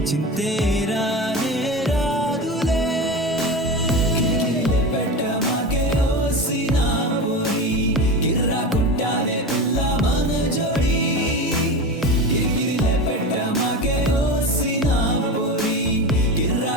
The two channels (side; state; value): both; normal; correlation 0.25